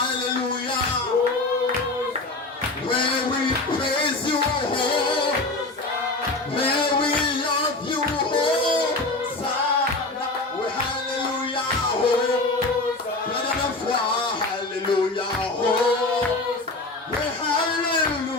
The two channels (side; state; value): right; quieter; 3.1 dB